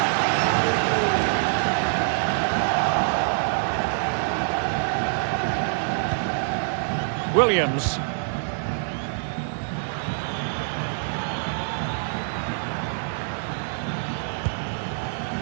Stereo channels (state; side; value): silent; left; digital silence